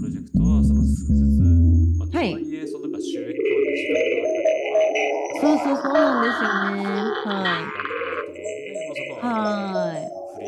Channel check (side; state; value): both; identical; correlation 1.00